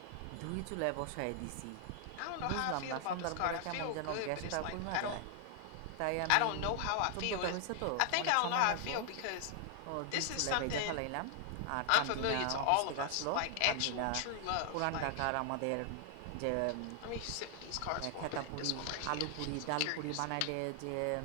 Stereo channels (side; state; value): both; different; correlation 0.00